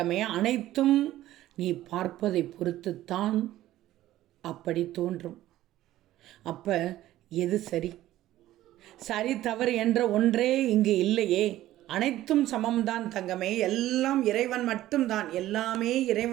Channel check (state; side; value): quieter; left; 14.4 dB